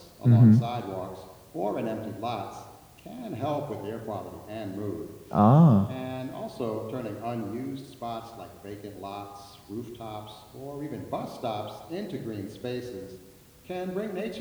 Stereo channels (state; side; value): identical; both; correlation 1.00